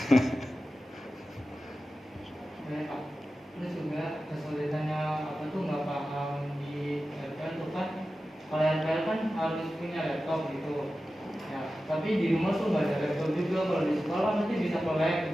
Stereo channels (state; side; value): normal; both; correlation 0.94